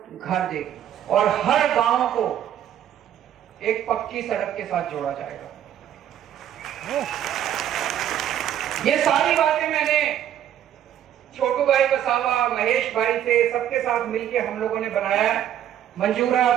घर देगी। और हर गांव को एक पक्की सड़क के साथ जोड़ा जाएगा। ये सारी बातें मैंने छोटू भाई वसावा, महेश भाई से, सबके साथ मिलके हम लोगों ने बनाया है। मंजूर है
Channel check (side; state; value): left; quieter; 10.7 dB